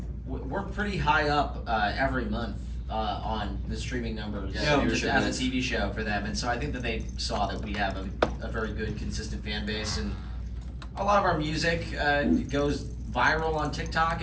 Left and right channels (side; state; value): both; identical; correlation 1.00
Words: we're pretty high up every month on the streaming numbers Yeah, just viewership as a is. TV show for them, and so I think that they saw that we have a very good, consistent fan base, and a lot of our music goes viral on TikTok